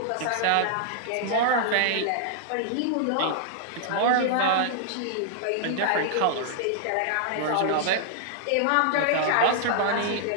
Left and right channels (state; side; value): different; both; correlation -0.01